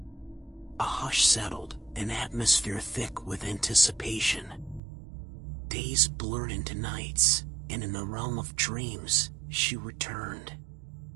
A hush settled, an atmosphere thick with anticipation. Days blurred into nights, and in the realm of dreams, she returned.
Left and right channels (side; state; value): left; drops out; at 4.8 s